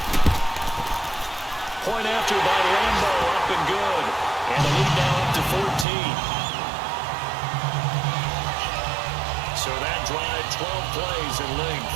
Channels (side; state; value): left; drops out; at 5.9 s